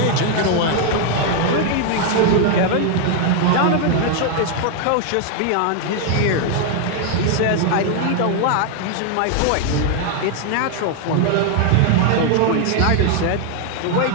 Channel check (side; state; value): both; different; correlation 0.00